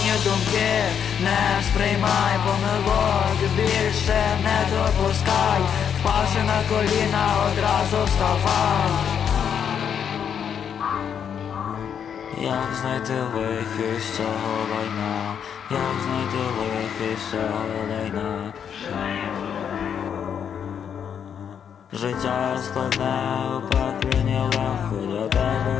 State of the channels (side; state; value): right; quieter; 8.0 dB